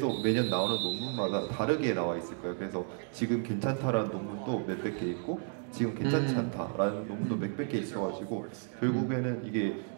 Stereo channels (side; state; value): left; silent; 56 dB below the other